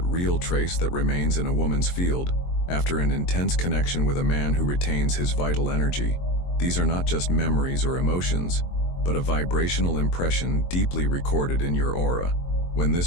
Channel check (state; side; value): late; right; 22 ms